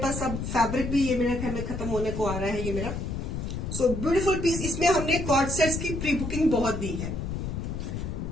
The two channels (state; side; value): noise; left; rumble, 4 dB below the sound